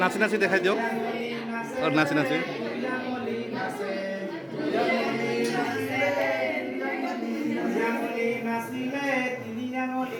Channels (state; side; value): identical; both; correlation 1.00